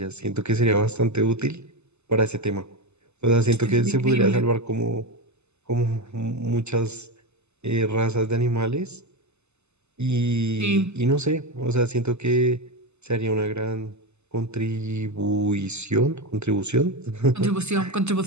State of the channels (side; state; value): left; late; 0.81 ms